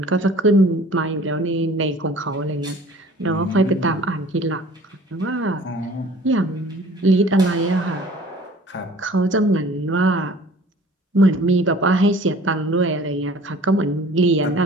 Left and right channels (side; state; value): both; normal; correlation 0.49